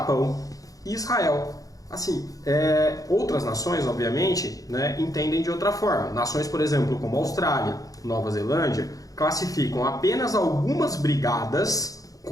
e Israel. Assim, outras nações, obviamente, né, entendem de outra forma. Nações, por exemplo, como Austrália, Nova Zelândia, classificam apenas algumas brigadas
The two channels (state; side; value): late; right; 0.17 ms